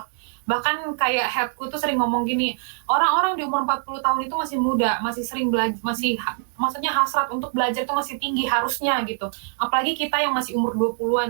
Bahkan kayak headku tuh sering ngomong gini, orang-orang di umur 40 tahun itu masih muda, masih sering belajar, masih maksudnya hasrat untuk belajar itu masih tinggi harusnya gitu. Apalagi kita yang masih umur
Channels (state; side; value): silent; left; digital silence